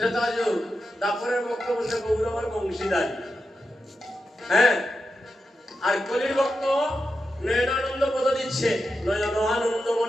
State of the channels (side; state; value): both; normal; correlation 0.89